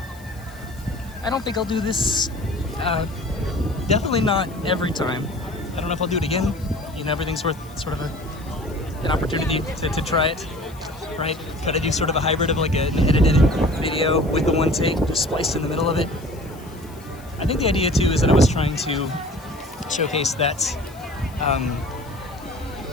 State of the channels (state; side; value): noise; left; hiss, 24 dB below the sound